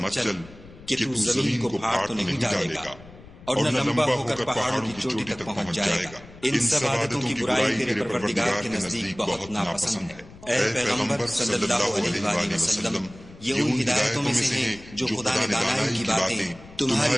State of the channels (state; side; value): noise; left; rumble, 20 dB below the sound